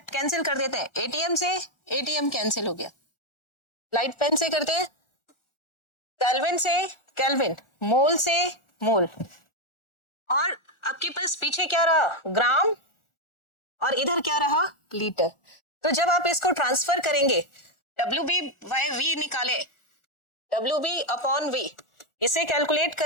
कर देते हैं। एटीएम से एटीएम कैंसिल हो गया, लाइट पेन से करते हैं, केल्विन से केल्विन, मोल से मोल, और आपके पास पीछे क्या रहा? ग्राम, और इधर क्या रहा? लीटर। तो जब आप इसको ट्रांसफर करेंगे, WB/V निकाले, WB/V इसे कैलकुलेट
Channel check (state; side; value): late; right; 1.4 ms